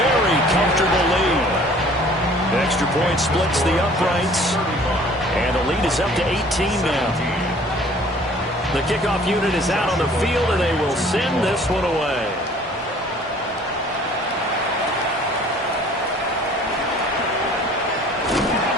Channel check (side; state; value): both; normal; correlation 0.52